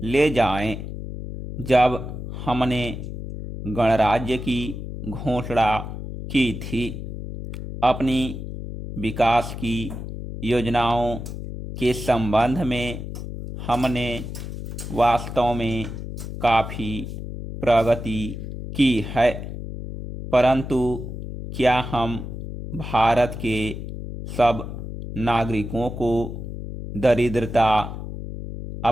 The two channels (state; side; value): noise; left; hum, 8 dB below the sound